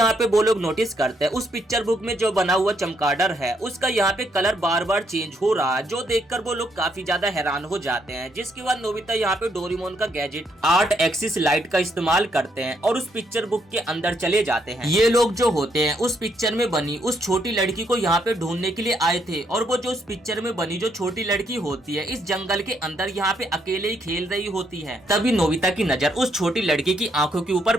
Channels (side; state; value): both; normal; correlation 0.74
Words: पे वो लोग नोटिस करते हैं उस पिक्चर बुक में जो बना हुआ चमगादड़ है उसका यहाँ पे कलर बार बार चेंज हो रहा है, जो देखकर वो लोग काफी ज्यादा हैरान हो जाते हैं। जिसके बाद नोबिता यहाँ पे डोरेमोन का गैजेट 8 एक्सिस लाइट का इस्तेमाल करते हैं और उस पिक्चर बुक के अंदर चले जाते हैं। ये लोग जो होते हैं उस पिक्चर में बनी उस छोटी लड़की को यहाँ पे ढूंढने के लिए आए थे और वो जो उस पिक्चर में बनी जो छोटी लड़की होती है इस जंगल के अंदर यहाँ पे अकेले ही खेल रही होती है। तभी नोबिता की नजर उस छोटी लड़की की आंखों के ऊपर